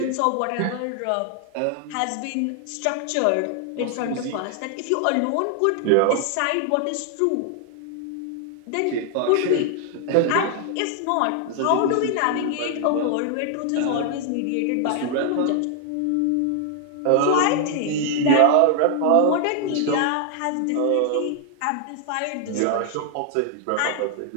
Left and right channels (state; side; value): different; both; correlation 0.00